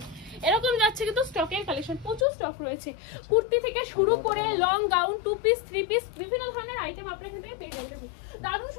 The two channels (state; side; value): drops out; right; at 2.2 s